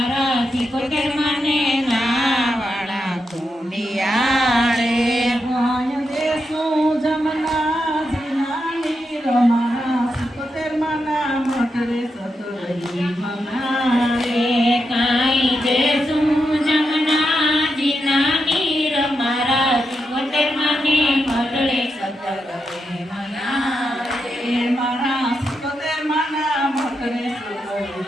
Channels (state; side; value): normal; both; correlation 0.85